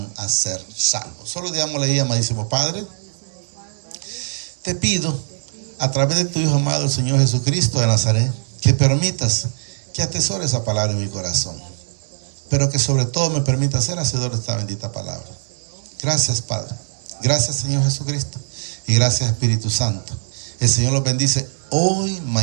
a ser salvos. Solo digámosle ahí, amadísimo Padre, te pido a través de tu Hijo amado, el Señor Jesucristo de Nazaret, que permitas que atesore esa palabra en mi corazón, pero que sobre todo me permita ser hacedor de esta bendita palabra. Gracias, Padre. Gracias, Señor Jesucristo. Y gracias, Espíritu Santo. El Señor los bendice hoy,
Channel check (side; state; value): left; silent; digital silence